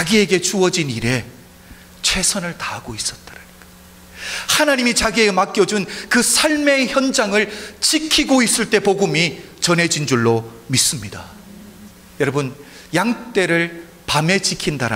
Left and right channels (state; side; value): identical; both; correlation 1.00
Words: 주어진 일에 최선을 다하고 있었다라는 것. 하나님이 자기에게 맡겨준 그 삶의 현장을 지키고 있을 때 복음이 전해진 줄로 믿습니다. 여러분, 양떼를 밤에